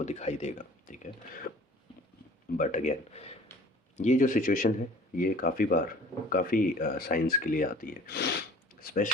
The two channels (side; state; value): both; normal; correlation 0.47